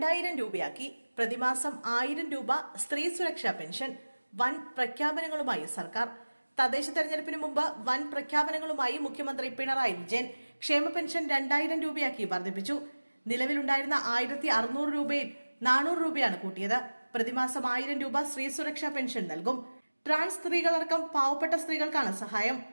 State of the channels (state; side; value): inverted; both; correlation -1.00